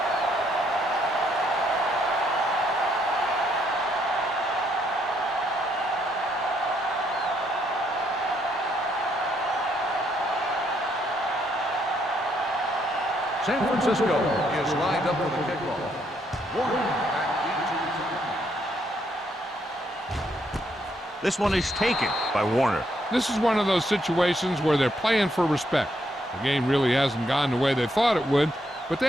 San Francisco is lined up for the kickoff. This one is taken by Warner. This is one of those situations where they're playing for respect. The game really hasn't gone the way they thought it would, but they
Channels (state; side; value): normal; both; correlation 0.73